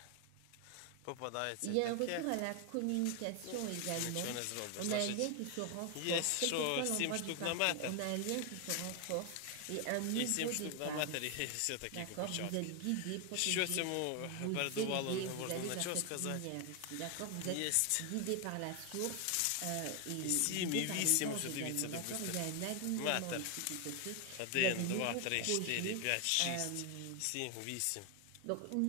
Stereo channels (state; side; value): different; both; correlation 0.00